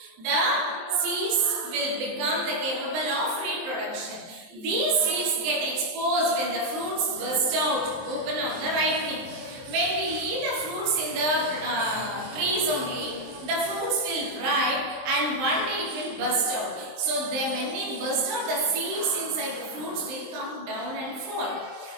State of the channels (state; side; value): late; left; 23 ms